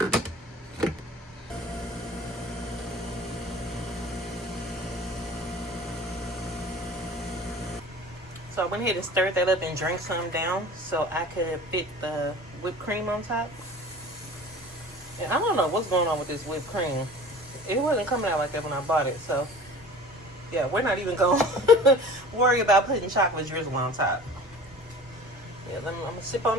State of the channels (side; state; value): both; normal; correlation 0.42